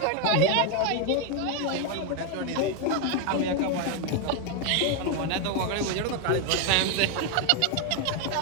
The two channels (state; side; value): different; both; correlation 0.01